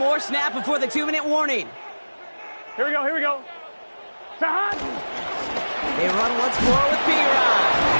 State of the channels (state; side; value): inverted; both; correlation -1.00